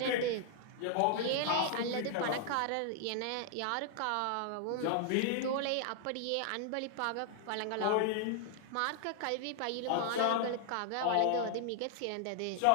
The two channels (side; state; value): both; different; correlation 0.00